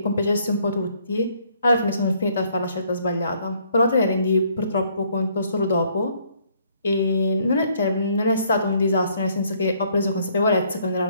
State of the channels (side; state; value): both; inverted; correlation -0.66